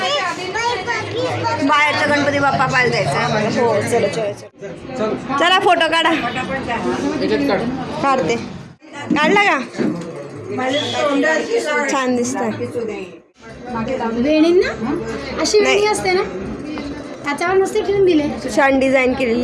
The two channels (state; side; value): identical; both; correlation 1.00